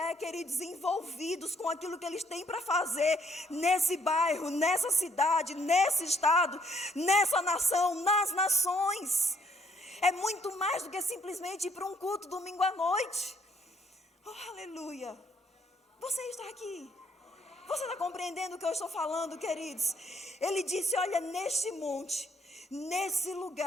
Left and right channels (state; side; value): normal; both; correlation 0.67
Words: queridos, envolvidos com aquilo que eles têm para fazer nesse bairro, nessa cidade, nesse estado, nessa nação, nas nações. É muito mais do que simplesmente ir para um culto domingo à noite. Oh, aleluia! Você está aqui. Você está compreendendo o que eu estou falando, queridos? Ele disse: olha, neste monte nesse